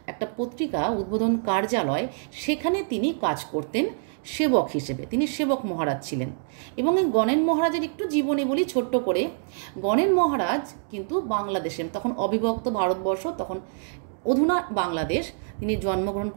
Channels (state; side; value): silent; left; digital silence